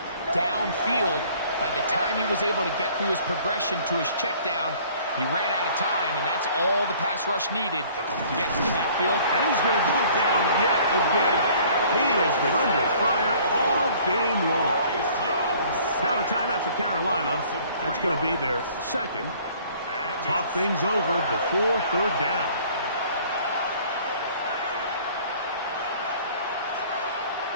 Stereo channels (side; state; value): both; inverted; correlation -0.54